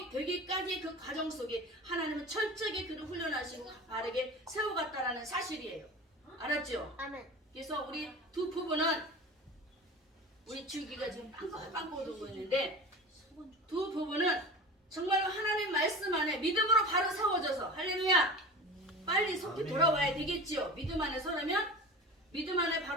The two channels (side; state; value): both; normal; correlation 0.34